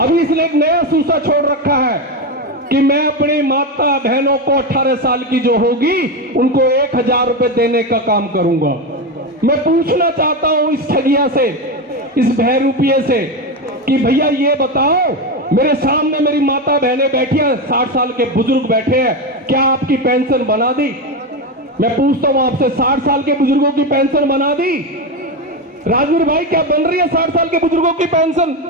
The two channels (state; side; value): normal; both; correlation 0.14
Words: इसने एक नया सूसा छोड़ रखा है कि मैं अपनी माता बहनों को 18 साल की जो होगी उनको 1000 रुपए देने का काम करूंगा। मैं पूछना चाहता हूं इस ठगिया से, इस बहरूपिये से, कि भैया ये बताओ, मेरे सामने मेरी माता बहनें बैठी हैं, 60 साल के बुजुर्ग बैठे हैं, क्या आपकी पेंशन बना दी? मैं पूछता हूं आपसे, 60 साल के बुजुर्गों की पेंशन बना दी? राजवीर भाई, क्या बन रही है 60 साल के बुजुर्गों की पेंशन?